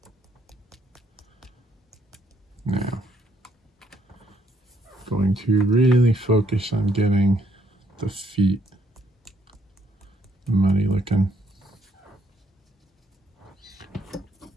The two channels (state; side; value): normal; both; correlation 0.70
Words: Now, going to really focus on getting the feet muddy looking.